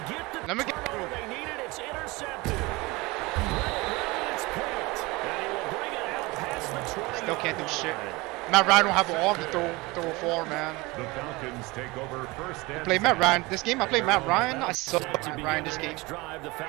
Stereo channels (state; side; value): quieter; left; 23.2 dB